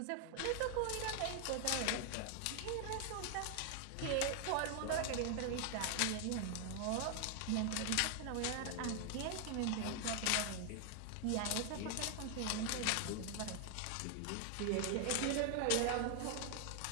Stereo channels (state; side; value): different; both; correlation 0.00